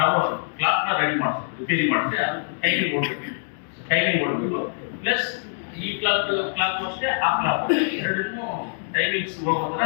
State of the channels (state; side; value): silent; right; 62 dB below the other